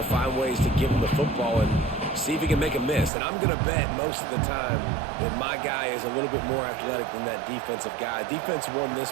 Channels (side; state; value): left; drops out; at 3.1 s